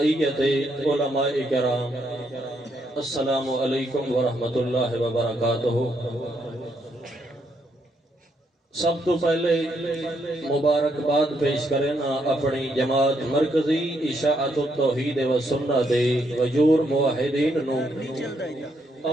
علماء کرام، السلام علیکم ورحمۃ اللہ وبرکاتہ۔ سب تو پہلے مبارکباد پیش کرنا اپنی جماعت مرکزی اشاعت التوحید و سنت دے وجور موحدین نو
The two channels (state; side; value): normal; both; correlation 0.76